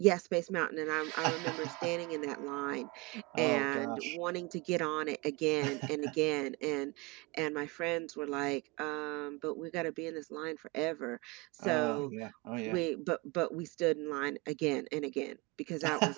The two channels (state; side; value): quieter; left; 25.1 dB